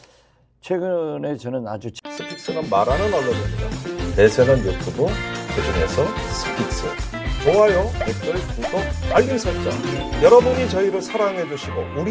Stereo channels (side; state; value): both; identical; correlation 1.00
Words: 최근에 저는 아주 스픽스는 말하는 언론입니다. 대세는 유튜브, 그중에서 스픽스. 좋아요, 댓글, 구독, 알림 설정. 여러분이 저희를 사랑해 주시고